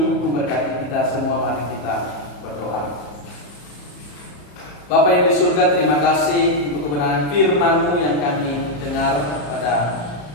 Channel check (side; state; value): right; late; 34 ms